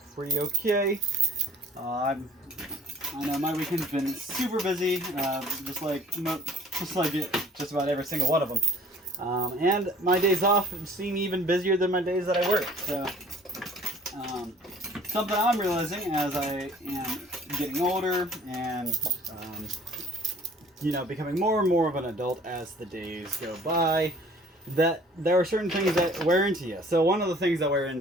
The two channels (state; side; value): normal; both; correlation 0.53